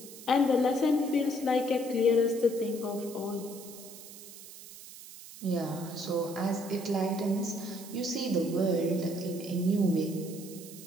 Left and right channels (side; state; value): right; noise; hiss, 15 dB below the sound